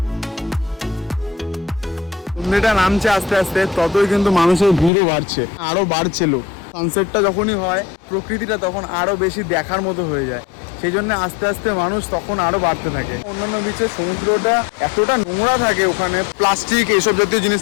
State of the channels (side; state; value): right; drops out; at 4.9 s